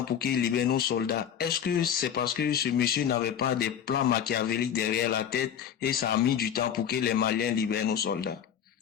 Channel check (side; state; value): right; quieter; 8.8 dB